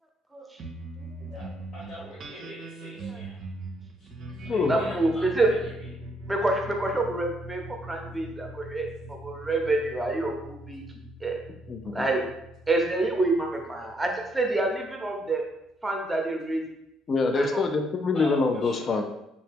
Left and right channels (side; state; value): both; normal; correlation 0.72